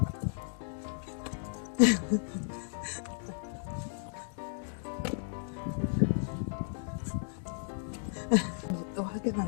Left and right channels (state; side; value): silent; right; digital silence